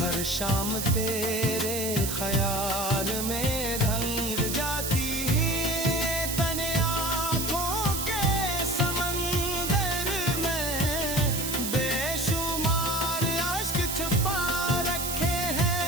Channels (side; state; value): right; noise; hiss, 3 dB below the sound